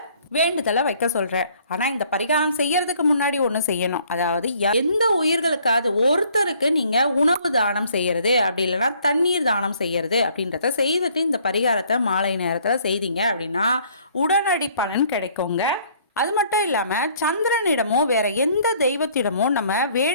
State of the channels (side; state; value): both; inverted; correlation -0.61